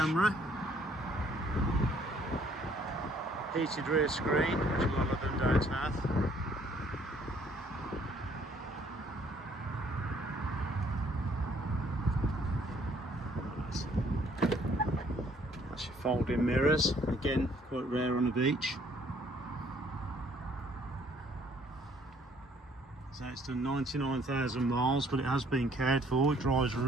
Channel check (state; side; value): normal; both; correlation 0.63